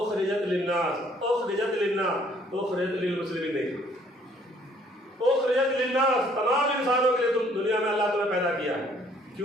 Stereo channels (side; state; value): both; normal; correlation 0.62